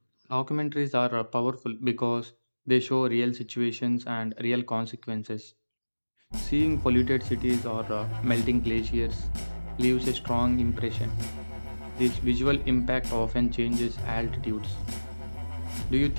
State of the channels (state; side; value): inverted; both; correlation -1.00